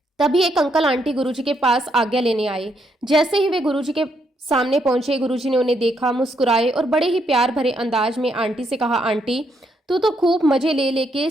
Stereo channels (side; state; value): both; normal; correlation 0.76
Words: तभी एक अंकल आंटी गुरुजी के पास आज्ञा लेने आए। जैसे ही वे गुरुजी के सामने पहुंचे, गुरुजी ने उन्हें देखा, मुस्कुराए और बड़े ही प्यार भरे अंदाज में आंटी से कहा, आंटी तू तो खूब मजे ले लेके